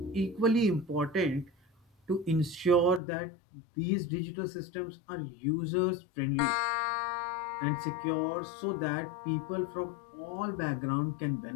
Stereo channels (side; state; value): right; drops out; at 3.0 s